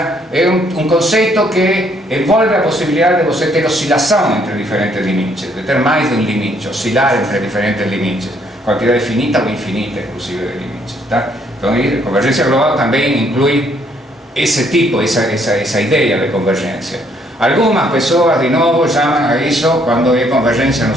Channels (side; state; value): both; normal; correlation 0.68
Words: é um conceito que envolve a possibilidade de você ter oscilação entre diferentes limites, de ter mais de um limite, oscilar entre diferentes limites, quantidade finita ou infinita, inclusive, de limites, tá? Então, a convergência global também inclui esse tipo, essa ideia de convergência. Algumas pessoas, de novo, chamam a isso, quando é convergência no